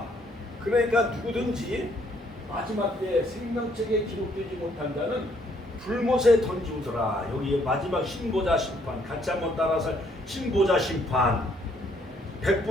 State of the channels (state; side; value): normal; both; correlation 0.67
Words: 그러니까 누구든지 마지막 때 생명책에 기록되지 못한 자는 불못에 던지우더라. 여기 마지막 신보자 심판, 같이 한번 따라서 신보자 심판,